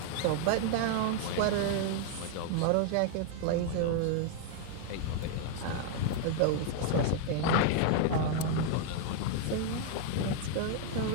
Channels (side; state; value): both; different; correlation 0.00